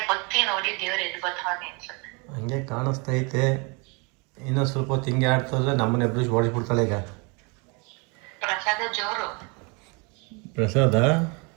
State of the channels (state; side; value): quieter; left; 31.4 dB